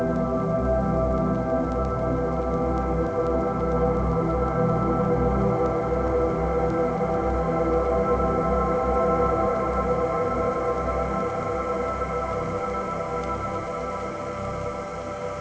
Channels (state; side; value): identical; both; correlation 1.00